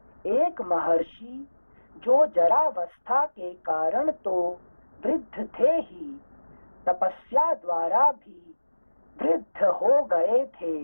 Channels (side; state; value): both; inverted; correlation -1.00